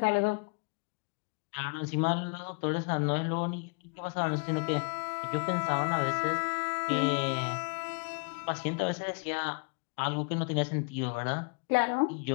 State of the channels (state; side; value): quieter; right; 35.2 dB